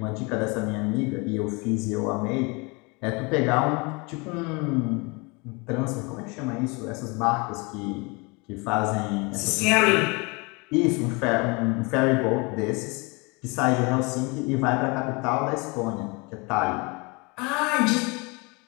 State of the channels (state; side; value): quieter; right; 28.6 dB